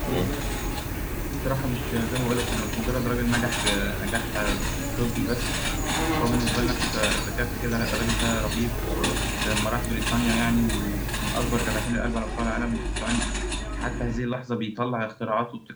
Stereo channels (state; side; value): identical; both; correlation 1.00